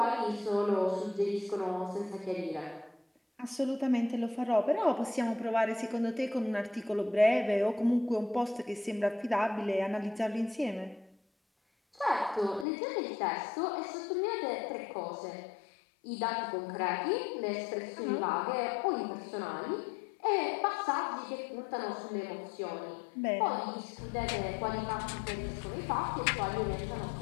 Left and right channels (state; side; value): drops out; right; at 12.7 s